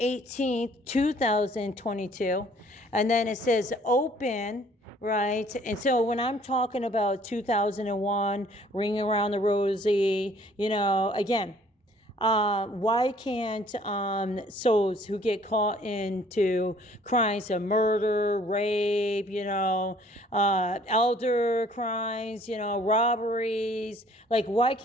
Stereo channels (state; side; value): normal; both; correlation 0.58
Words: 2022. And then it says open, right? And so when I'm talking about 2001, Ring Around the Rosie, again, why can't souls who get caught into crimes of murder, rape, elder crimes, robberies, like why